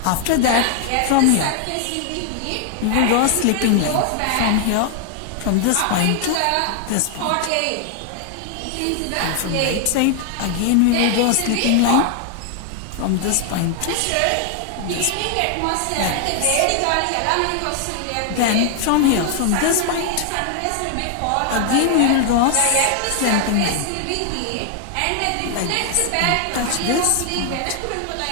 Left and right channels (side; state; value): both; different; correlation 0.00